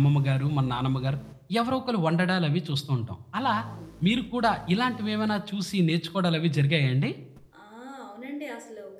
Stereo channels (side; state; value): both; identical; correlation 1.00